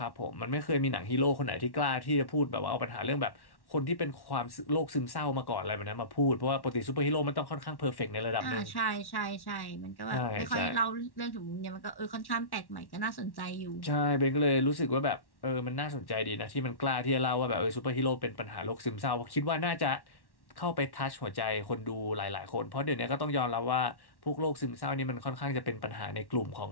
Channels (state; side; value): late; right; 1.1 ms